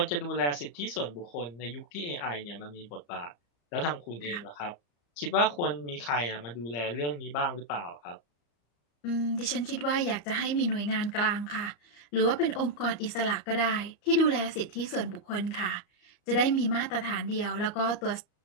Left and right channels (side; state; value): right; late; 34 ms